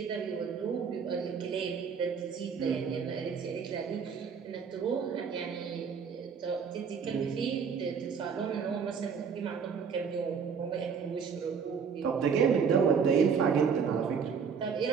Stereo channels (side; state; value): left; quieter; 6.3 dB